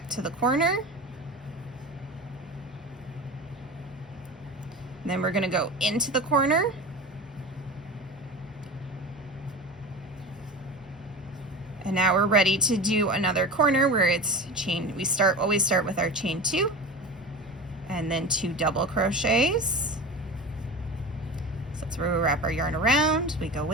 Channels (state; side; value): normal; both; correlation 0.31